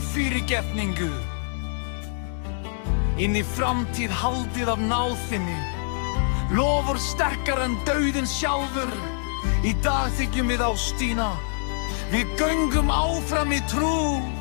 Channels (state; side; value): silent; right; 57 dB below the other